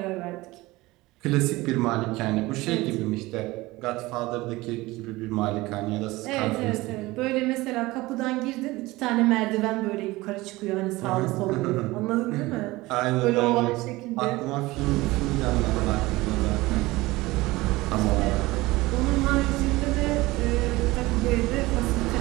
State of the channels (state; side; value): quieter; left; 20.1 dB